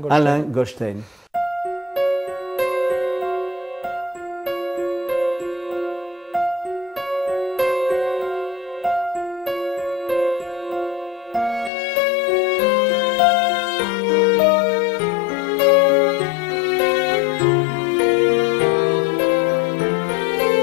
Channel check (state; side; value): drops out; right; at 11.7 s